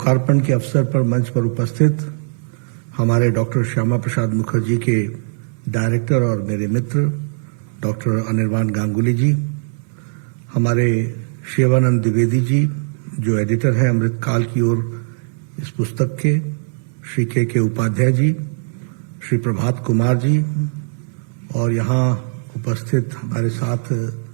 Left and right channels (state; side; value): silent; left; 61 dB below the other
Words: के अवसर पर मंच पर उपस्थित हमारे डॉक्टर श्यामा प्रसाद मुखर्जी के डायरेक्टर और मेरे मित्र डॉक्टर अनिर्बान गांगुली जी, हमारे शिवानंद द्विवेदी जी जो एडिटर हैं अमृतकाल की ओर इस पुस्तक के, श्री के उपाध्याय जी, श्री प्रभात कुमार जी और यहाँ उपस्थित हमारे साथ